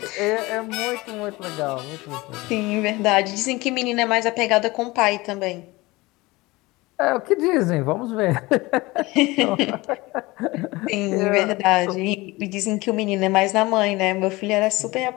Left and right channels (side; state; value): right; quieter; 21.6 dB